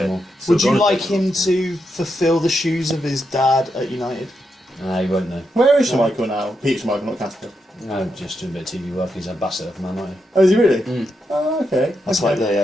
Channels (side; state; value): both; normal; correlation 0.84